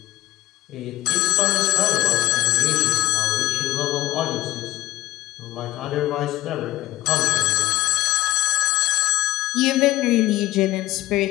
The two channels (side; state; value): right; quieter; 16.3 dB